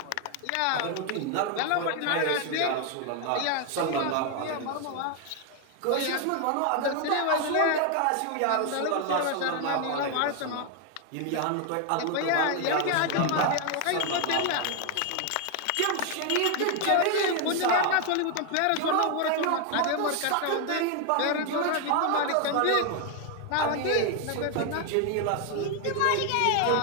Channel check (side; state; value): both; different; correlation 0.01